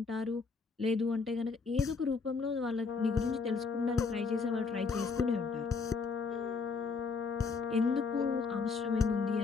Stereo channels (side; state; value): right; quieter; 4.9 dB